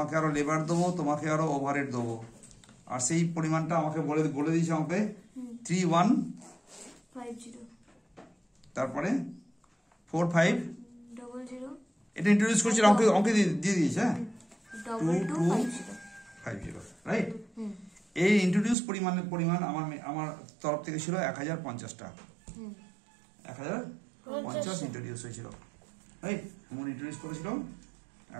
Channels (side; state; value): left; drops out; at 18.8 s